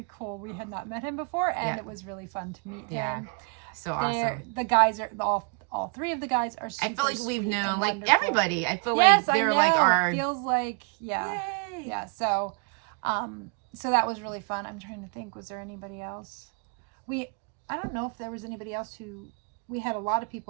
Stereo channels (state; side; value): quieter; left; 36.0 dB